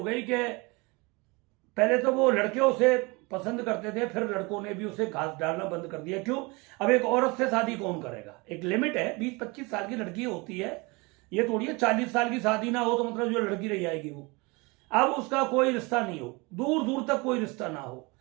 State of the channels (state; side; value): quieter; left; 26.5 dB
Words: कि पहले तो वो लड़के उसे पसंद करते थे, फिर लड़कों ने भी उसे घास डालना बंद कर दिया। क्यों? अब एक औरत से शादी कौन करेगा? एक लिमिट है, 20-25 साल की लड़की होती है, ये थोड़ी है 40 साल की शादी ना हो तो मतलब जो लड़की रह जाएगी वो। अब उसका कोई रिश्ता नहीं हो, दूर दूर तक कोई रिश्ता ना हो।